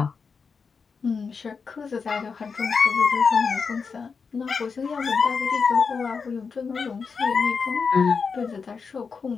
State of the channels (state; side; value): quieter; right; 5.4 dB